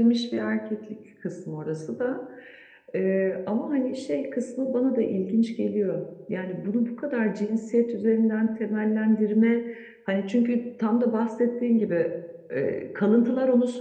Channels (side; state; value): both; identical; correlation 1.00